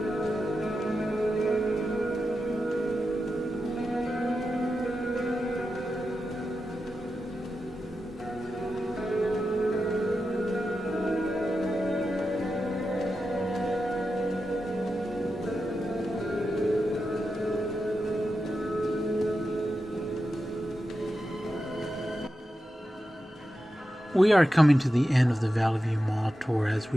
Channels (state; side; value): normal; both; correlation 0.90